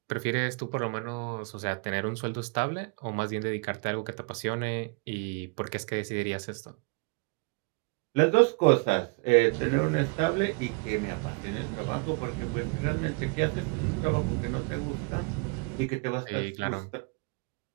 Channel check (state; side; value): quieter; left; 31.6 dB